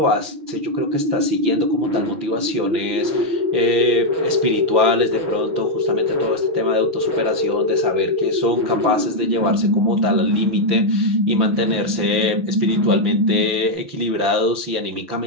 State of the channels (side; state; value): left; late; 5.9 ms